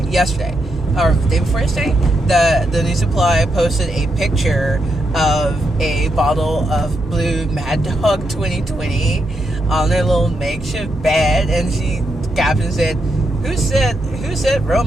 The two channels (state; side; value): normal; both; correlation 0.82